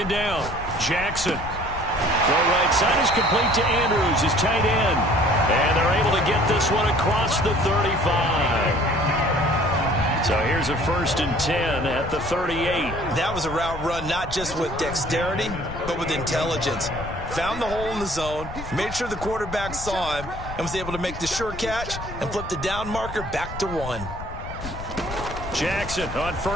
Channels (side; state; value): left; noise; rumble, 10 dB below the sound